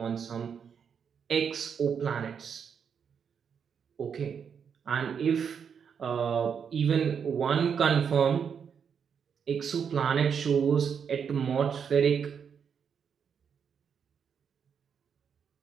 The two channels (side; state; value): left; quieter; 7.1 dB